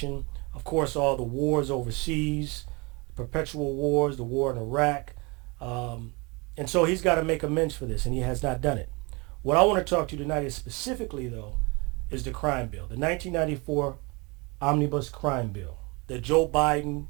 of course, all the wars overseas, perpetual wars, the war in Iraq. And so he's got to make amends for this, and he has not done it. What I want to talk to you tonight is specifically, though, is the crime bill, the 1994 Omnibus Crime Bill that Joe Biden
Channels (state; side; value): quieter; left; 28.1 dB